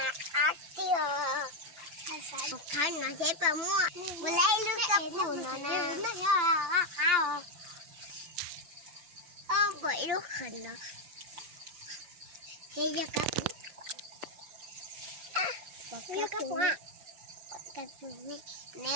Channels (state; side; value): late; left; 6.8 ms